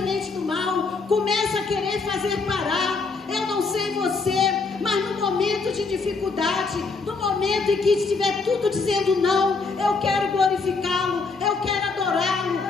do mal, começa a querer fazer parar. Eu não sei você, mas no momento de dificuldade, no momento em que estiver tudo dizendo não, eu quero glorificá-lo, eu quero adorá-lo,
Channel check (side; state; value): right; quieter; 4.3 dB